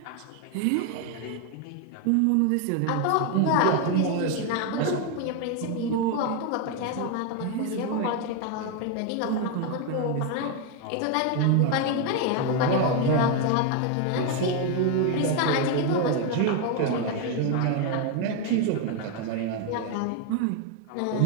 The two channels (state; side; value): different; both; correlation 0.01